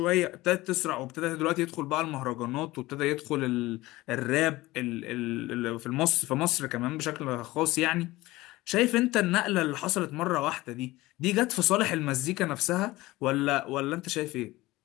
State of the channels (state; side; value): quieter; right; 19.0 dB